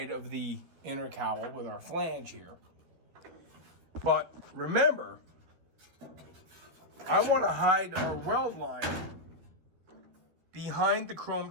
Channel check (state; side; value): late; left; 13 ms